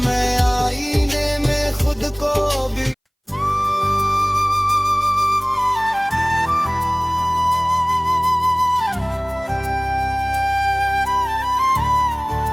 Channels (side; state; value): both; identical; correlation 1.00